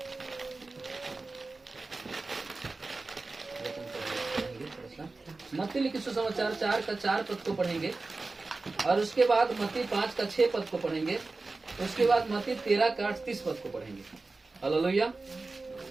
मत्ती लिखित सुसमाचार 4 का 4 पद को पढ़ेंगे और उसके बाद मत्ती 5 का 6 पद को पढ़ेंगे। उसके बाद मत्ती 13 का 38 पद को पढ़ेंगे। हालेलुया।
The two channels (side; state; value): left; quieter; 3.5 dB